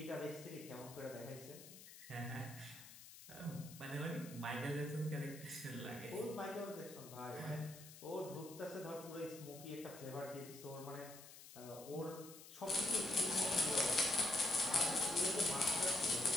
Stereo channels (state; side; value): noise; left; hiss, 16 dB below the sound